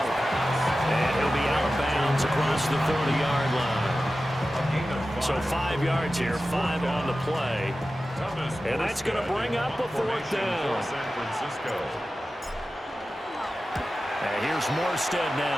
And he'll be out of bounds across the 30-yard line. So 5 yards here, 5 on the play. And that's going to bring up a 4th down. And here's Morstead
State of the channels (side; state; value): both; normal; correlation 0.94